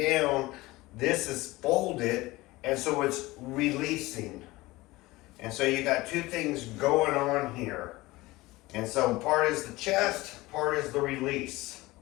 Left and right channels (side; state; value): right; quieter; 20.1 dB